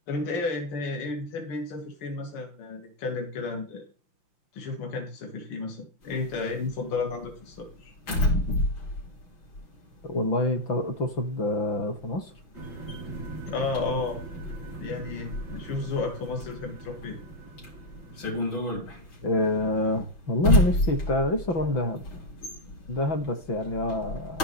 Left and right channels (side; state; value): right; late; 5.8 ms